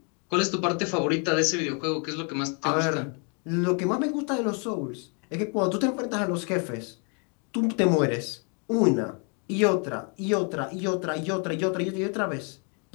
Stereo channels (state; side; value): quieter; right; 37.1 dB